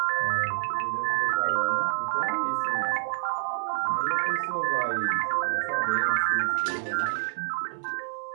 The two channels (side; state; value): left; silent; digital silence